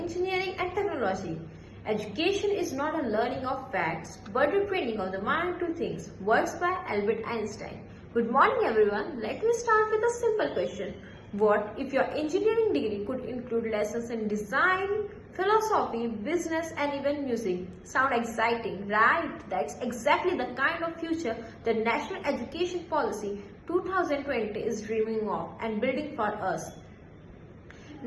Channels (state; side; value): identical; both; correlation 1.00